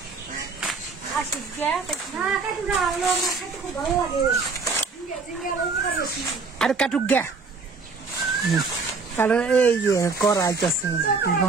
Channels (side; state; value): left; quieter; 4.5 dB